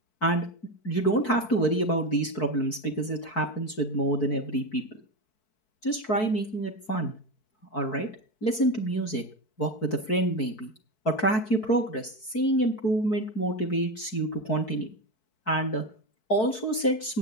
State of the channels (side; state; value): right; late; 4.6 ms